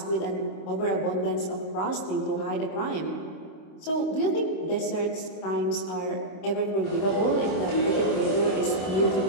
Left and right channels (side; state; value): right; late; 26 ms